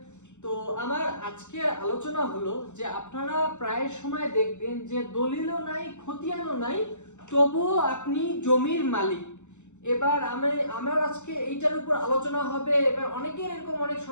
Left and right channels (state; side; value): late; right; 0.84 ms